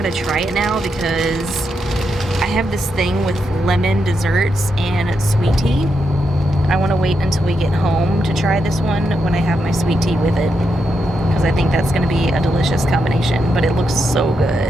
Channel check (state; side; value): normal; both; correlation 0.83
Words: try it now because I have this thing with lemon desserts and sweet tea. I want to wait until we get home to try this one when I have my sweet tea with it, because I think that's going to be a delicious combination, but it looks so